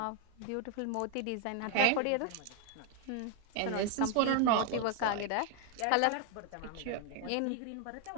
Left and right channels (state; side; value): different; both; correlation 0.01